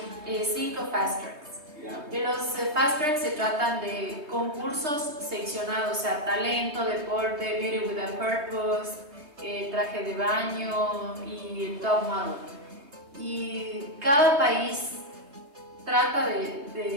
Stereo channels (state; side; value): late; left; 3.3 ms